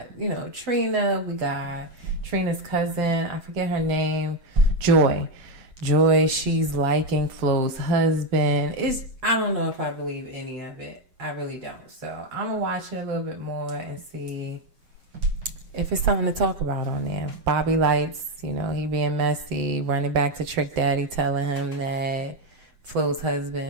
Trina. We got Trina's cousin. I forget her name. Joy, she's liking Flo's husband. I don't know if I believe any of it. I really don't. So I'm going to watch it a little bit more and see if it's something to talk about on there. Bobby Lights, he being messy, running back to Trick Daddy, telling him that Flo's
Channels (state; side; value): late; left; 7.9 ms